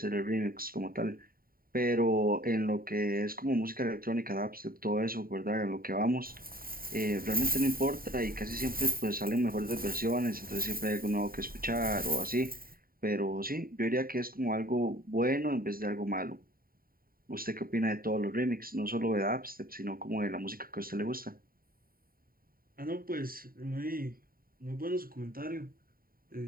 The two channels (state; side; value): late; left; 0.43 ms